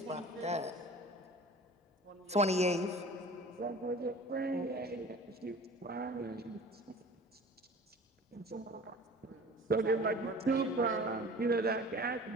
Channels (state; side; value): normal; both; correlation 0.43